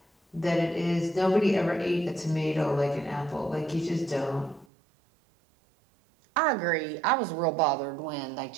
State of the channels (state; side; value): drops out; left; at 4.7 s